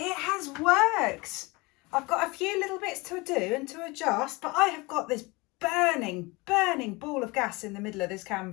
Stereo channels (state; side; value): quieter; right; 24.8 dB